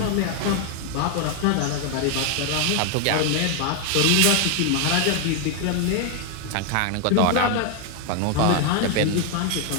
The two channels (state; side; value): different; both; correlation 0.00